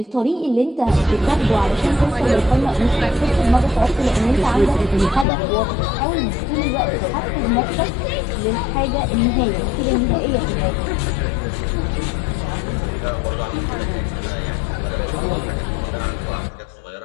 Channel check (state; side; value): drops out; right; at 5.2 s